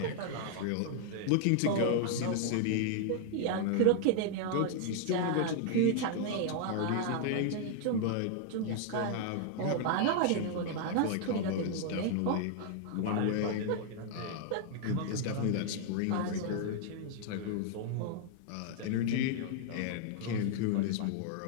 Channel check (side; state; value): both; different; correlation -0.01